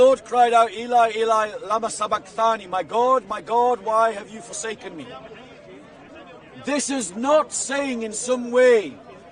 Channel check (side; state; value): both; identical; correlation 1.00